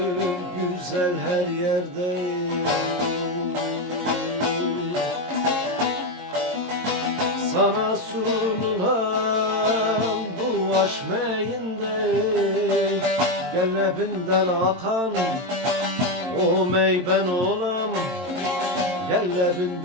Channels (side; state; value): left; late; 22 ms